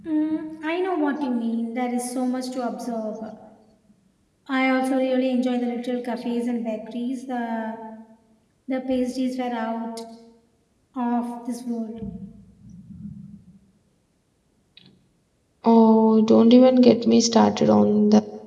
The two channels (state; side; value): identical; both; correlation 1.00